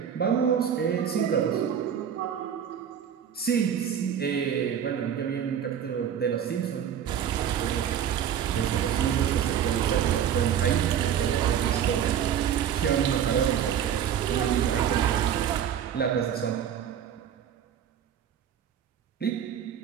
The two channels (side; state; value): left; quieter; 9.0 dB